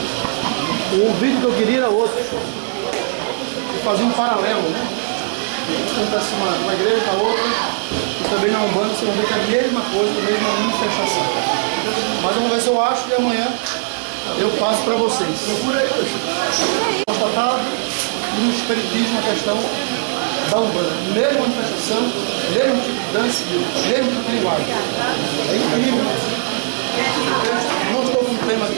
O vídeo que eu queria era outro. Eu fazia um paralelo, né? Acontece uma igreja com a outra, e também na Umbanda você vai ver que é a mesma coisa, a mesma manifestação. Mas vamos ver se eu acho e amanhã eu passo para vocês. Procura aí, constatado no espiritismo a questão da Umbanda. Mesma manifestação, mesmo tipo de dança, mesmo tipo de linguagem. É incrível. Não estou com o tema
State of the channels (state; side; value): silent; left; digital silence